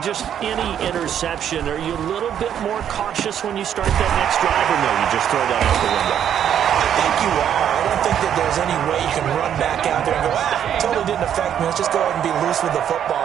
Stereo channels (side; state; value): left; quieter; 9.5 dB